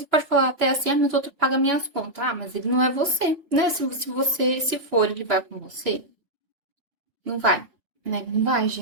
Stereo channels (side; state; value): left; late; 3.1 ms